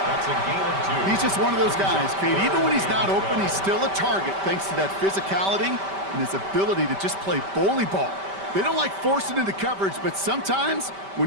That's a gain of 2. He's just one of those guys, Kate. Even when he's not open, he's still a target thanks to that physicality and his ability to just play bully ball. They don't like forcing into coverage, but sometimes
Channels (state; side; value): late; left; 5.1 ms